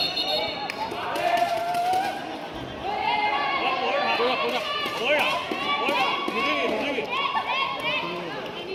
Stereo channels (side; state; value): both; identical; correlation 1.00